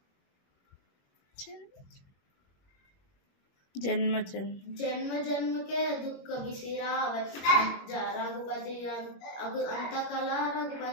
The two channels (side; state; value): right; late; 21 ms